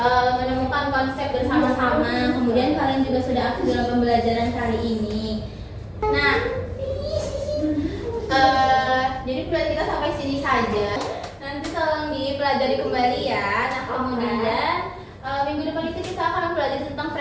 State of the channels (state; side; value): identical; both; correlation 1.00